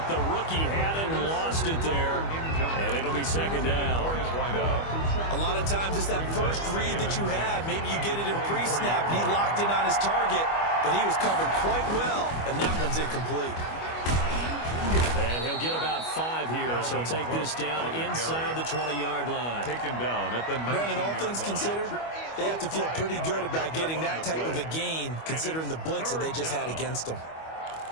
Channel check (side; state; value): right; late; 25 ms